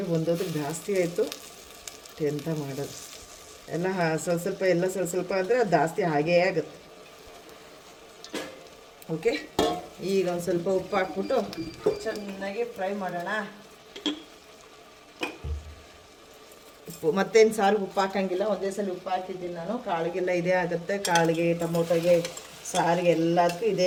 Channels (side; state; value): both; identical; correlation 1.00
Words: ಒಂದೊಂದಕ್ಕೆ ಜಾಸ್ತಿ ಆಯಿತು, ಎಂತ ಮಾಡೋದು, ಎಲ್ಲ ಸ್ವಲ್ಪ ಎಲ್ಲ ಸ್ವಲ್ಪ ಅಂದರೆ ಅದು ಜಾಸ್ತಿ ಹಾಗೇ ಆಗುತ್ತೆ. ಓಕೆ, ಈಗ ಒಂದು ಸ್ವಲ್ಪ ಉಪ್ಪು ಹಾಕ್ಬಿಟ್ಟು ಚೆನ್ನಾಗಿ ಫ್ರೈ ಮಾಡೋಣ. ಉಪ್ಪು ಮತ್ತೇನು ಸಾರಿಗೆ ಉಪ್ಪು ಹಾಕೋಂಗಿಲ್ಲ, ಒಂದೇ ಸಲ ಉಪ್ಪು ಹಾಕಿದ್ದೀನಿ ನಾನು. ಕಾಳಿಗೆಲ್ಲ ಇದೇ ಆಗುತ್ತೆ, ಕಾಳಿಗೆ, ಟೊಮೊಟೊಗೆ, ಸಾರಿಗೆ ಎಲ್ಲದಕ್ಕೂ